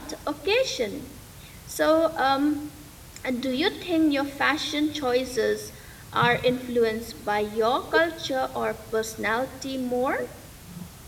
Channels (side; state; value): both; identical; correlation 1.00